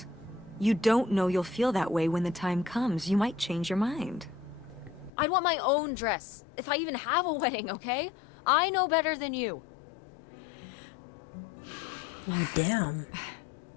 You don't know you'll feel that way when the time comes. You might change your mind. I'd want my own dress, if I even have a wedding, okay? I know better than you. Oh, damn.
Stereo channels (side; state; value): right; drops out; at 5.1 s